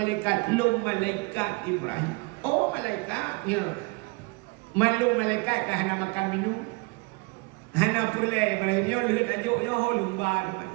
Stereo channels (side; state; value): left; quieter; 28.2 dB